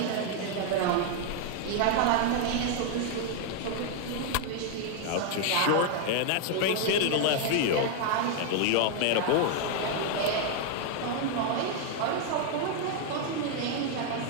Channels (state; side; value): different; both; correlation 0.00